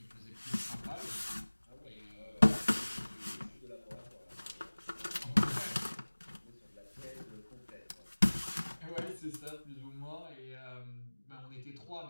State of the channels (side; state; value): both; inverted; correlation -1.00